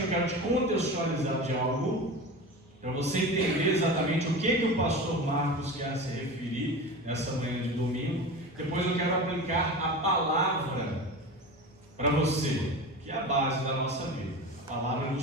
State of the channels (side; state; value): both; normal; correlation 0.29